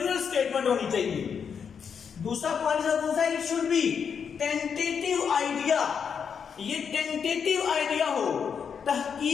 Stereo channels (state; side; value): quieter; right; 6.8 dB